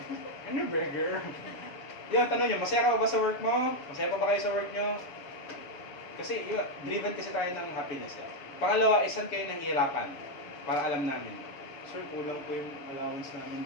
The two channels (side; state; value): right; late; 7.2 ms